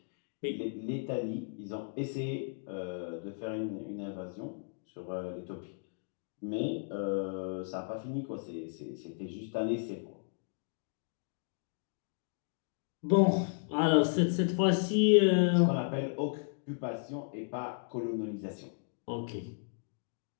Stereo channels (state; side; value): silent; right; digital silence